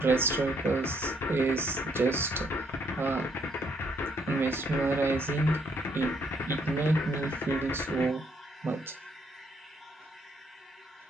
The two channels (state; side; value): normal; both; correlation 0.71